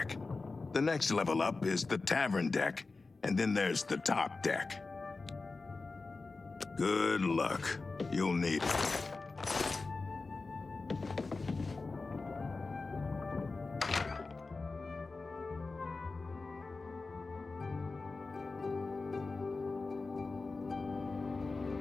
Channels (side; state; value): right; quieter; 3.8 dB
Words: The next level up is the tavern deck, and then there's the top deck. Good luck. You'll need it.